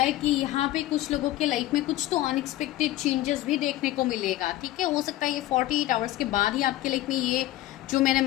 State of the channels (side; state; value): right; quieter; 15.3 dB